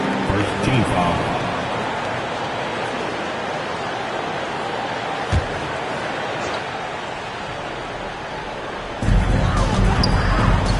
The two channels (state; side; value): identical; both; correlation 1.00